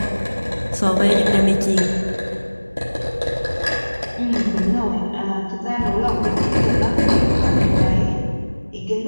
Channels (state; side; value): inverted; both; correlation -1.00